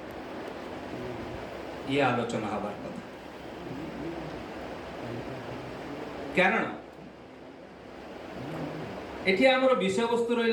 ये आलोचना हबार कथा कारण एठी आमर विषय वस्तु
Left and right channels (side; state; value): both; identical; correlation 1.00